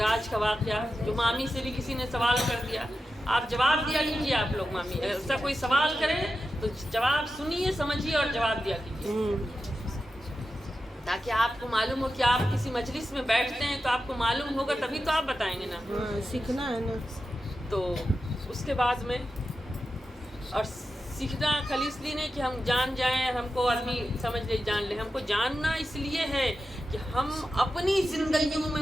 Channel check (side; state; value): both; normal; correlation 0.91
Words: کا واقعہ جو مامی سے بھی کسی نے سوال کر دیا، آپ جواب دیا کیجیے. آپ لوگ مامی ایسا کوئی سوال کرے تو جواب سنیے، سمجھیے اور جواب دیا کیجیے، تاکہ آپ کو معلوم ہو کہ آپ کسی مجلس میں بیٹھتے ہیں تو آپ کو معلوم ہوگا، تبھی تو آپ بتائیں گے نا. سیکھنا ہے نا. تو اس کے بعد میں اور سیکھنا خالی اس لیے نہیں کہ ہم جان جائیں، ہم کو آدمی سمجھ لے جان لے. ہم کو جاننا اس لیے ہے کہ ہم اپنی زندگیوں